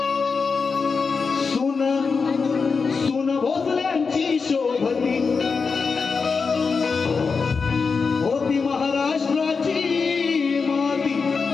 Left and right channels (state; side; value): quieter; right; 5.0 dB